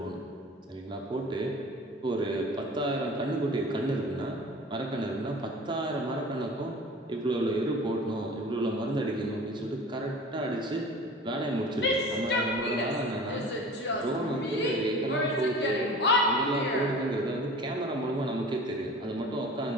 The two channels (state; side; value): normal; both; correlation 0.41